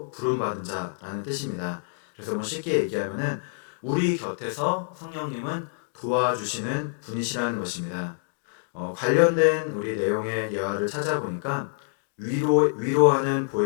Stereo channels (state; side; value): silent; right; digital silence